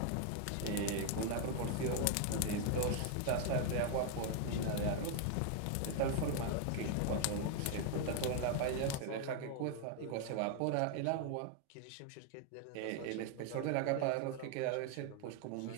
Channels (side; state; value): both; different; correlation 0.00